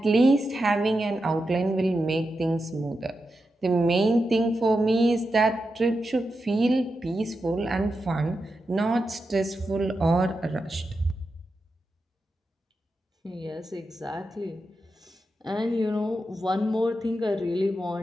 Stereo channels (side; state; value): both; normal; correlation 0.88